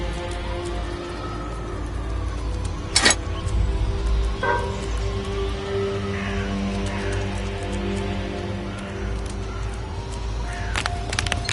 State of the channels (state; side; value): identical; both; correlation 1.00